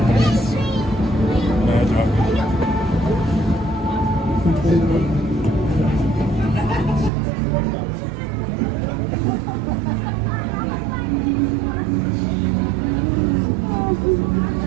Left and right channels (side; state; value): left; drops out; at 7.1 s